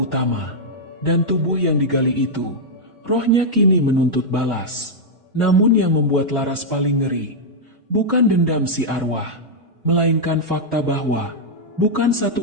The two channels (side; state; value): both; normal; correlation -0.05